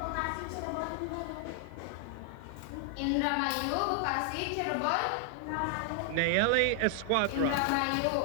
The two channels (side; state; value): both; different; correlation 0.00